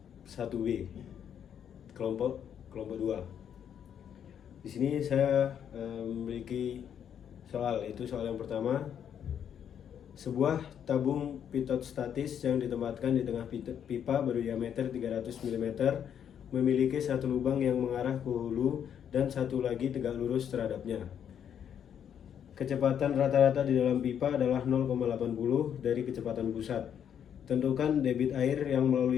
1B, kelompok 2. Di sini saya memiliki soal, itu soal yang pertama. Sebuah tabung pitot statis yang ditempatkan di tengah pipa berdiameter 300 mm memiliki satu lubang yang mengarah ke hulu dan satu lagi tegak lurus terhadapnya. Kecepatan rata-rata di dalam pipa adalah 0,80 dari kecepatan pusat. Tentukan debit air yang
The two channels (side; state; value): right; quieter; 8.8 dB